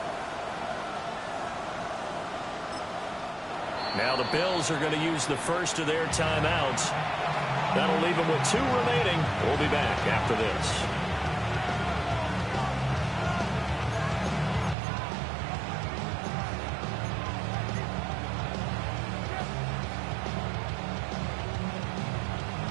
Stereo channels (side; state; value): left; drops out; at 14.8 s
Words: Now the Bills are going to use the first of their timeouts. That'll leave them with 2 remaining. We'll be back after this.